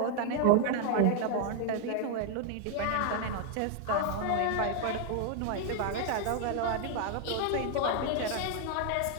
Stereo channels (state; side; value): different; both; correlation 0.00